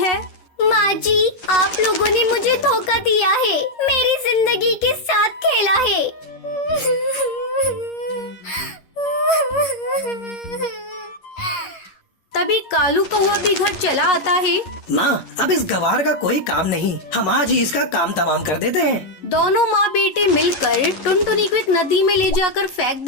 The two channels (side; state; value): right; late; 11 ms